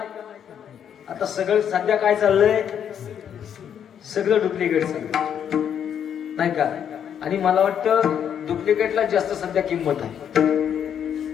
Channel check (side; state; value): right; quieter; 8.7 dB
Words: आता सगळं सध्या काय चाललंय? सगळं डुप्लिकेट चाललंय नाही का? आणि मला वाटतं डुप्लिकेटला जास्त सध्या किंमत आहे.